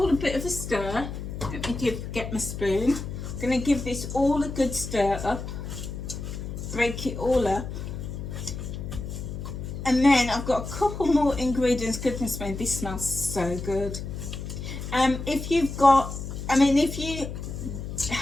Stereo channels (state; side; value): noise; left; hum, 7 dB below the sound